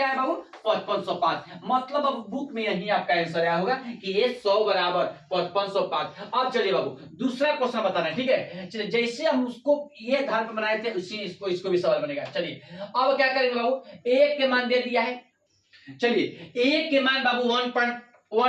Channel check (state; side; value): identical; both; correlation 1.00